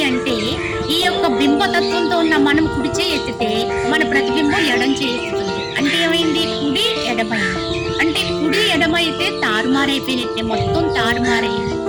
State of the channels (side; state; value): both; identical; correlation 1.00